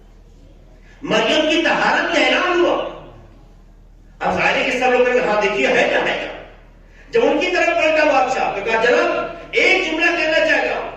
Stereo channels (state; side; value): identical; both; correlation 1.00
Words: مریم کی طہارت کا اعلان ہوا۔ اب ظاہر ہے کہ سب لوگ کہتے ہیں ہاں دیکھیے ہے کیا ہے کیا۔ جب ان کی طرف پلٹا بادشاہ تو کہا جناب ایک جملہ کہنا چاہتا ہوں،